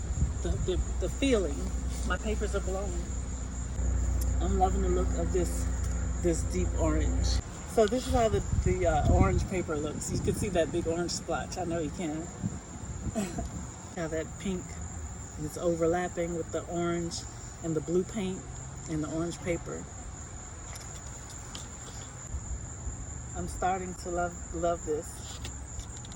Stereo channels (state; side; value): identical; both; correlation 1.00